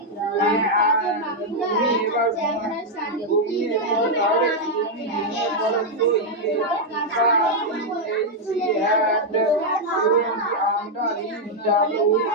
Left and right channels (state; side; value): normal; both; correlation -0.01